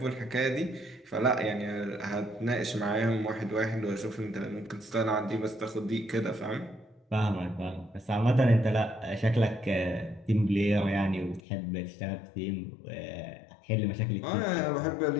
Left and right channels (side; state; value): right; drops out; at 11.4 s